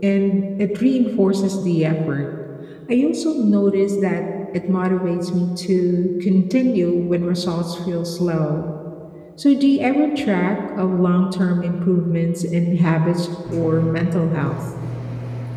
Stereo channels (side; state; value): both; identical; correlation 1.00